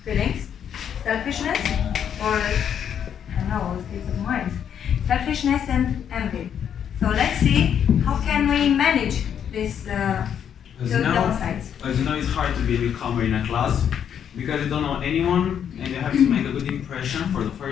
feelings: selfishness, or I don't know, states of mind. Selfishness and envy. So let's see how can we manage this downsides. As you know, it's hard to be a newcomer in a class because you don't know anyone and you have to make a good impression for the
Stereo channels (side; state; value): right; quieter; 8.7 dB